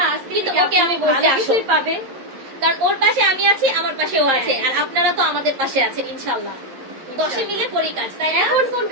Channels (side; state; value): left; late; 11 ms